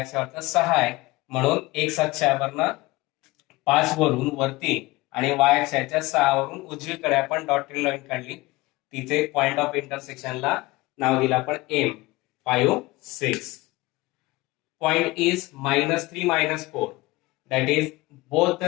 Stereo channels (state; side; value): quieter; right; 20.9 dB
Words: अक्षावरचा 6 आहे, म्हणून एक्स अक्षावरनं 5 वरून वरती आणि वाय अक्षाच्या 6 वरून उजवीकडे आपण डॉटेड लाईन काढली. तिथे पॉइंट ऑफ इंटरसेक्शनला नाव दिलं आपण M5 6. Point is -3 -4. That is, both